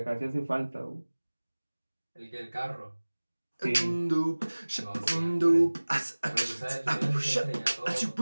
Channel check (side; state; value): both; inverted; correlation -1.00